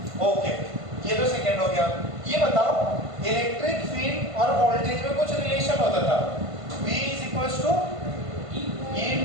ओके, ये तो सेकंड हो गया। ये बताओ, इलेक्ट्रिक फील्ड और वोल्टेज में कुछ रिलेशन होता था। V is equals to E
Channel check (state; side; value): late; left; 1.5 ms